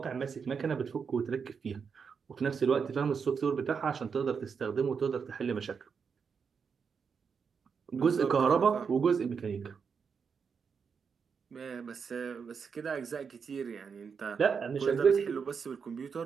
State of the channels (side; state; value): left; quieter; 6.1 dB